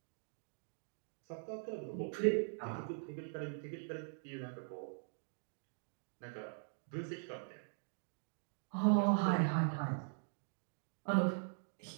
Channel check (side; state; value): left; silent; digital silence